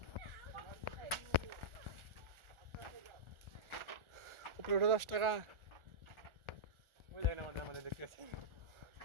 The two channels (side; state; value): left; late; 1.4 ms